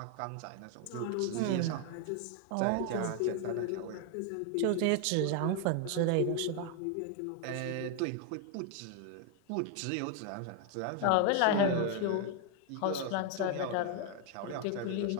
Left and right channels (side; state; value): both; different; correlation 0.01